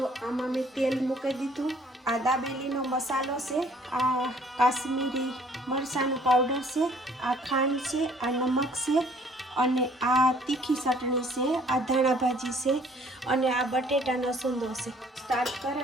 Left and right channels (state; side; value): normal; both; correlation 0.58